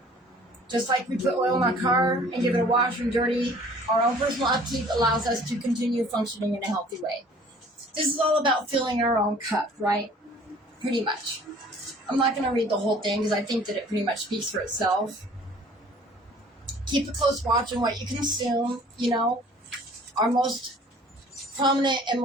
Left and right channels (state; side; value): normal; both; correlation 0.52